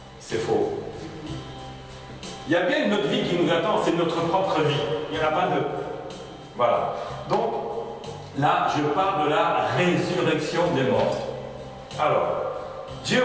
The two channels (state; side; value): identical; both; correlation 1.00